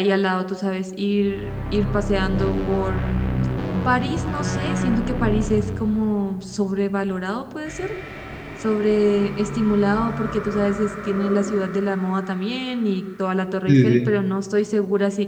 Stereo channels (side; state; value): both; identical; correlation 1.00